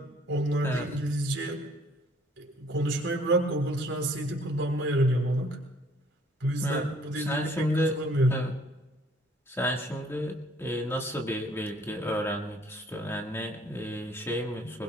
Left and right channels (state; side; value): normal; both; correlation 0.60